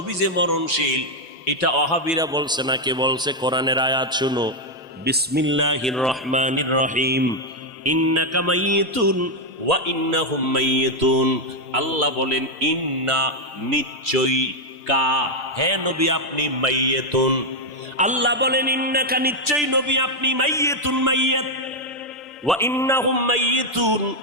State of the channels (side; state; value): both; normal; correlation 0.02